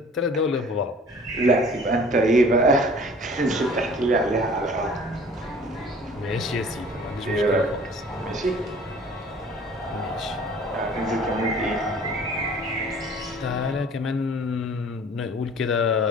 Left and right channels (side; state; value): both; normal; correlation 0.49